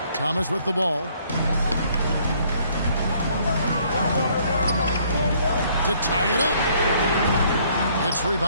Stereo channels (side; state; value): both; inverted; correlation -0.63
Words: Thomas with the ball. To tie it up. It's